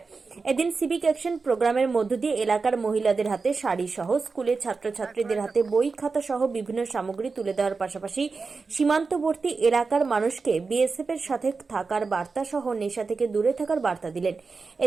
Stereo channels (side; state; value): left; quieter; 4.4 dB